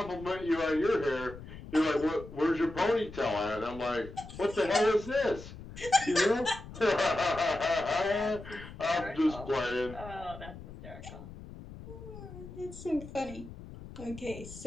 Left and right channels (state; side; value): noise; left; rumble, 14 dB below the sound